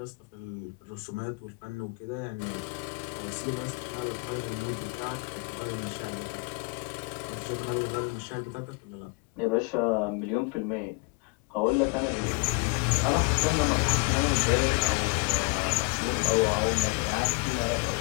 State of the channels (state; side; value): quieter; right; 30.1 dB